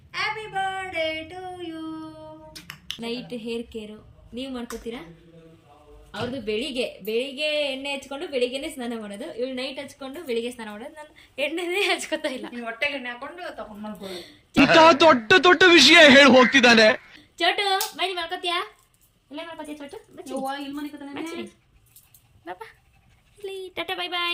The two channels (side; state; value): both; identical; correlation 1.00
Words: Happy birthday to you. Night hair care ನೀವು ಮಾಡ್ಕೋತೀರಾ? ಅವ್ರದ್ದು ಬೆಳಿಗ್ಗೆ ಎಣ್ಣೆ ಹಚ್ಕೊಂಡು ಬೆಳಿಗ್ಗೆನೆ ಸ್ನಾನ ಮಾಡೋದು. ಇವಳು ನೈಟ್ ಹಚ್ಕೊಂಡು ಬೆಳಿಗ್ಗೆ ಸ್ನಾನ ಮಾಡೋದು. ನಾನು ಎಣ್ಣೆನೇ ಹಚ್ಕೋತಾ ಇಲ್ಲ. ಹೊಟ್ಟೆಗೆ ಎಣ್ಣೆ ಹಾಕೊಂಡು ತಗೊಂಡ್ ಮಾಡ್ಕೊಳ್ಳಿ. ದೊಡ್ಡ ದೊಡ್ಡ ವಿಷಯ ಹೇಳಿ ಹೋಗ್ತಿದ್ದಾನೆ. ಚೋಟು ಬನ್ನಿ ಮಾಡ್ಕೋತೀಯಾ? ಇಲ್ಲ ಮಾಡ್ಕೋತೀಯ ಚೋಟು? ಇಲ್ಲಿ ಮನೆ tata bye